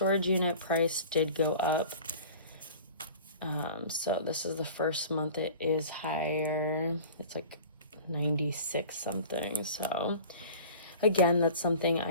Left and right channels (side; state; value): both; inverted; correlation -0.41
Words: unit price did go up. So this is the first month it is higher. It's like 96 something. So again, that's something